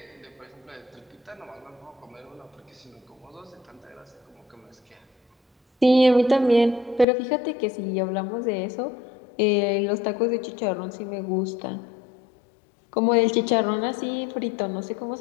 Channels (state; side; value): drops out; right; at 7.1 s